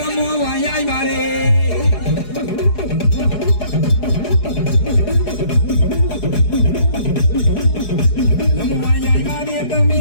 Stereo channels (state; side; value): late; right; 4.8 ms